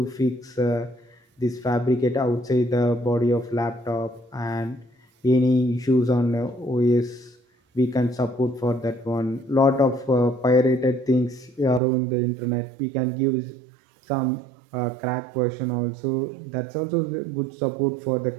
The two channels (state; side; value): drops out; left; at 11.8 s